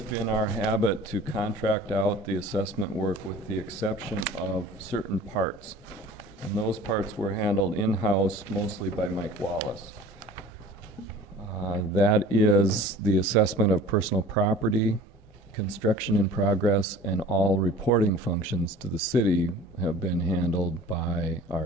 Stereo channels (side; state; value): both; normal; correlation 0.44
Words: been our habit to contract out the assessment work with the exception of certain parts. And those parts were handled in-house mostly by Mike Wallace. That is the assessment of personal property, construction in progress, and all reporting functions to the city have been handled by